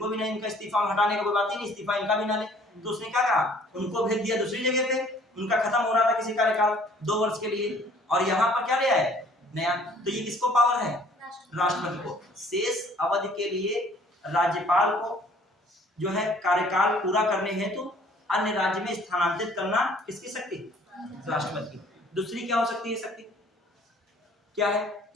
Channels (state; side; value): normal; both; correlation 0.56